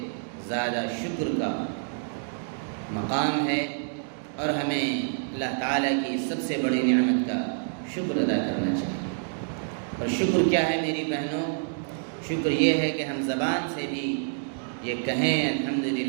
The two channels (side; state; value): left; silent; digital silence